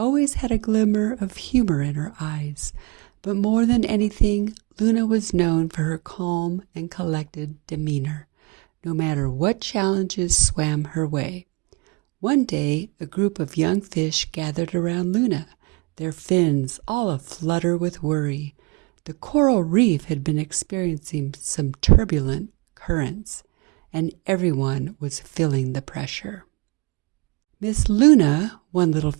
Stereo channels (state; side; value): quieter; left; 27.2 dB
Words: had a glimmer of humor in her eyes. But more than anything, Luna was known for her calm and collected demeanor, no matter what challenges swam her way. One day, a group of young fish gathered around Luna, their fins all aflutter with worry. The coral reef had been experiencing some turbulent currents, and everyone was feeling the pressure. "Miss Luna," one little